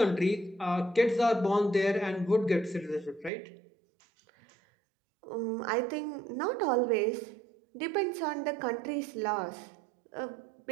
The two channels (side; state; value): left; drops out; at 3.3 s